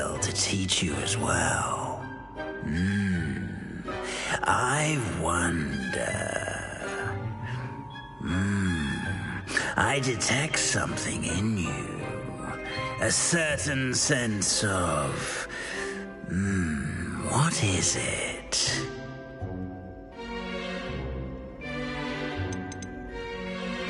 to teach you as well. I wonder... I detect something in you. A certain sense of... what is it?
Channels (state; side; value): identical; both; correlation 1.00